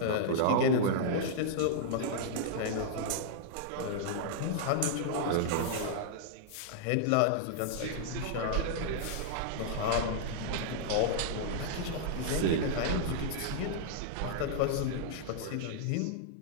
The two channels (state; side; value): different; both; correlation -0.01